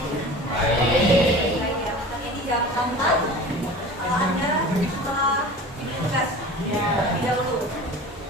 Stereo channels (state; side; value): normal; both; correlation 0.38